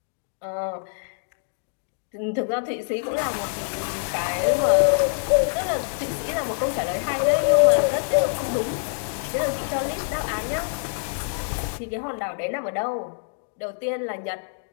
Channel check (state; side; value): silent; right; digital silence